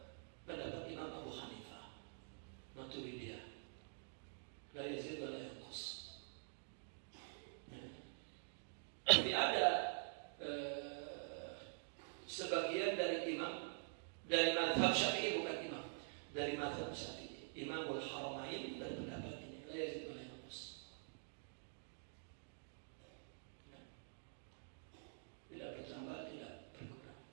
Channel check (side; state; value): left; silent; digital silence